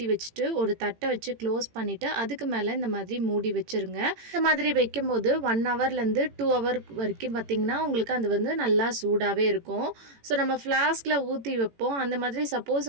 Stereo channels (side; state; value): left; late; 18 ms